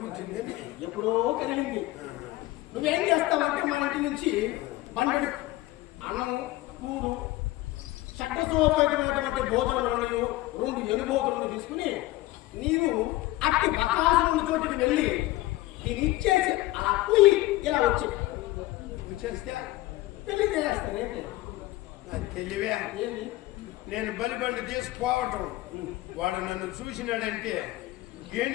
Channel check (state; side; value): quieter; right; 17.8 dB